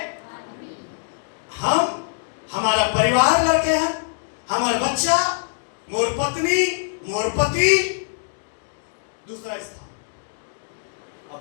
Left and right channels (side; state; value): right; silent; digital silence